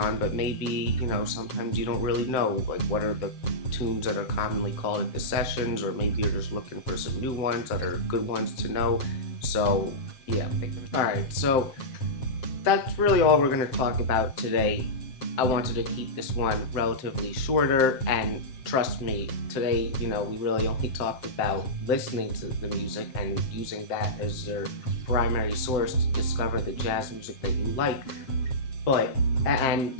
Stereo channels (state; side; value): late; right; 7.7 ms